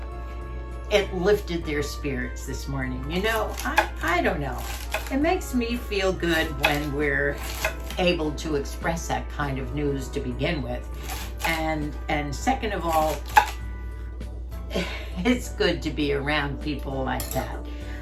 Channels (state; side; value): identical; both; correlation 1.00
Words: it lifted their spirits this morning. You know, I don't know. It makes me feel good when we're able to express that kind of news to begin with. And second of all, it's good to be around people like that.